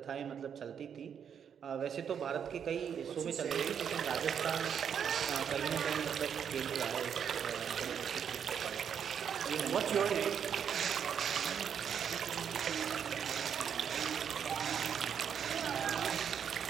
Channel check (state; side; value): quieter; left; 7.9 dB